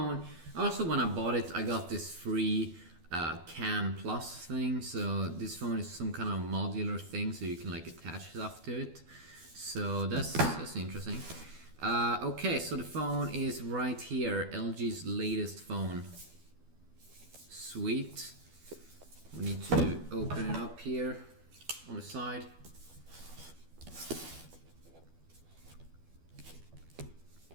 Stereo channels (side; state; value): left; late; 12 ms